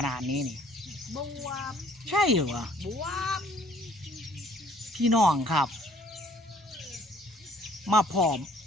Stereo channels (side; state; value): both; normal; correlation 0.59